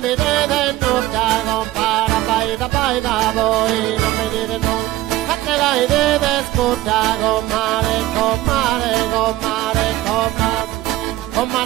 vedete nulla, compara, baita, voi non vedete nulla. Fatte la idea scorda, comare, comare, comare, comare,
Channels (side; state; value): left; quieter; 15.8 dB